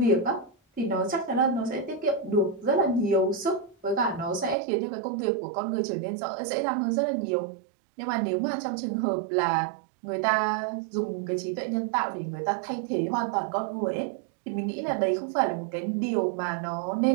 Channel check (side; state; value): left; drops out; at 4.5 s